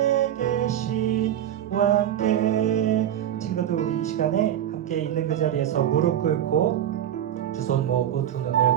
계신 왕께. 친구들, 우리 이 시간에 함께 있는 그 자리에서 무릎 꿇고 두 손 모으고 두 눈을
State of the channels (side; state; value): left; quieter; 10.9 dB